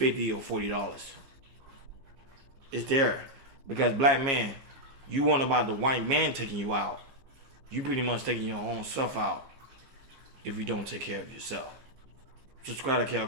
or $40. It's there because black man, you want about the white man taking you out. You pretty much taking your own self out if you don't take care of yourself. Subscribe to Cal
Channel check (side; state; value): left; late; 15 ms